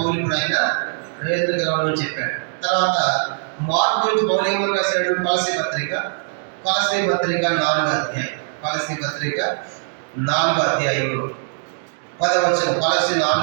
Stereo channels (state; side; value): silent; left; 64 dB below the other